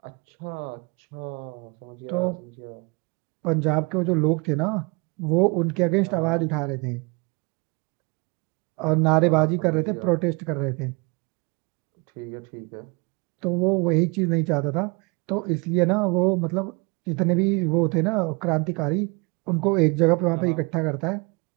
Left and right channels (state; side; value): quieter; left; 29.2 dB